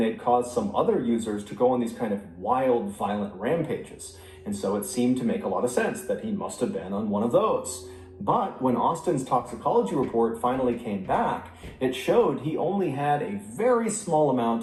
caused some other users to go on these kind of wild, violent rampages. And so it seemed to make a lot of sense that he must have been on one of those. But when Austin's toxicology report finally came back, it showed he only had a very small amount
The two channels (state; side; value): identical; both; correlation 1.00